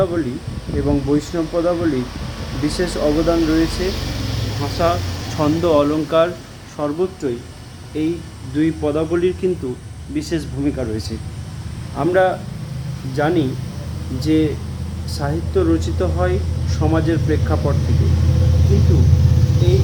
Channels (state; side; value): identical; both; correlation 1.00